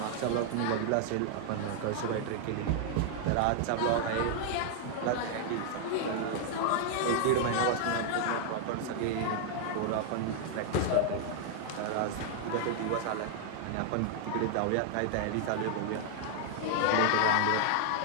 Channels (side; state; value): both; different; correlation 0.00